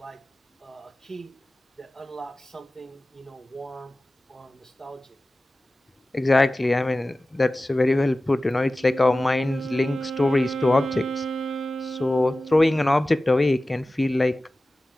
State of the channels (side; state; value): both; normal; correlation 0.96